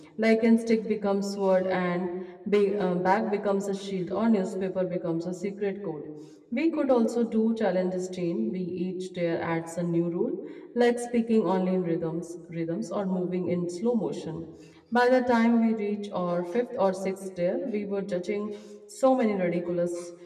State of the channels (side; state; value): both; identical; correlation 1.00